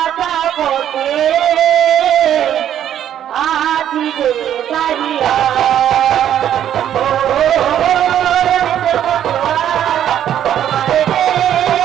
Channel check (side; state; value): left; quieter; 10.5 dB